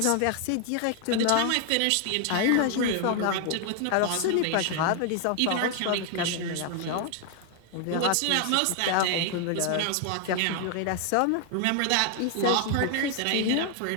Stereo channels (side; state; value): both; different; correlation 0.00